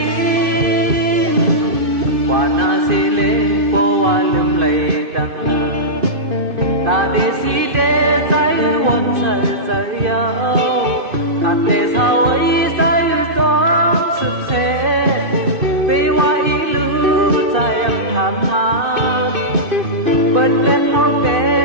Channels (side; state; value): left; late; 2.6 ms